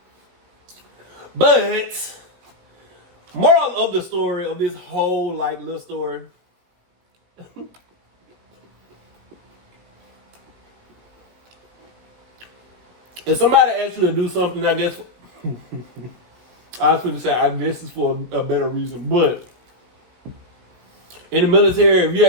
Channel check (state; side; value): late; left; 17 ms